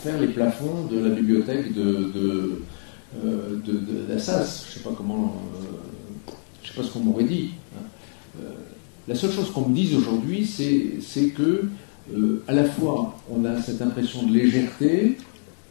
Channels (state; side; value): silent; right; digital silence